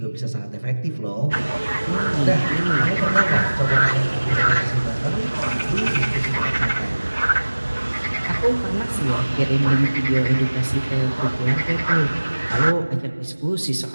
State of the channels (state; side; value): inverted; both; correlation -1.00